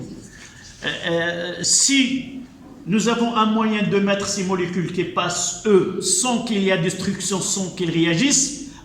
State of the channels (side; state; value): both; identical; correlation 1.00